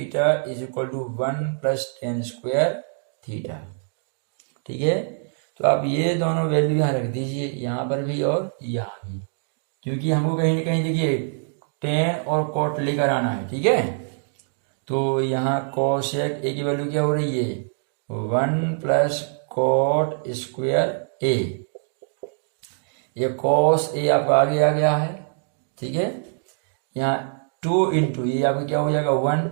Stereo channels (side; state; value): left; silent; digital silence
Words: is equal to 1 plus tan square theta, ठीक है। तो आप ये दोनों वैल्यू यहाँ रख दीजिए, यहाँ पर भी और यहाँ भी, क्योंकि हमको कहीं ना कहीं देखिए टेन और कॉट लेकर आना है, ठीक है। तो यहाँ कोसेक ए की वैल्यू क्या हो रही है, 1 प्लस कॉट स्क्वायर ए, ये कॉस ए आपका आगे आ गया है, ठीक है। यहाँ 2 इंटू ये आपका क्या हो जाएगा 1,